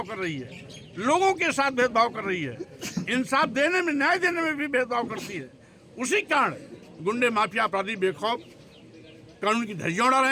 कर रही है, लोगों के साथ भेदभाव कर रही है, इंसाफ देने में, न्याय देने में भी भेदभाव करती है, उसी कारण गुंडे माफिया अपराधी बेखौफ कानून की धज्जियां उड़ा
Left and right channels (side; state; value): both; identical; correlation 1.00